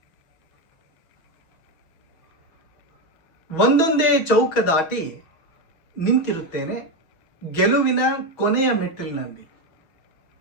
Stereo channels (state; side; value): late; right; 6.2 ms